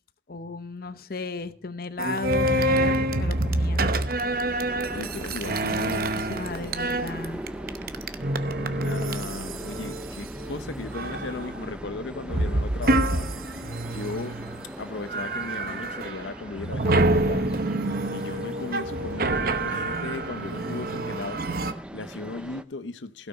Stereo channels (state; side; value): normal; both; correlation 0.40